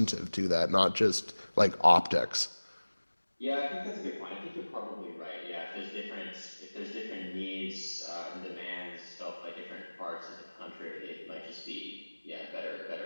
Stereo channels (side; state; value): both; inverted; correlation -1.00